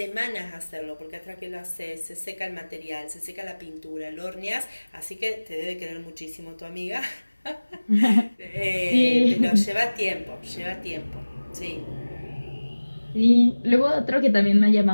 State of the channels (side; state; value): both; inverted; correlation -1.00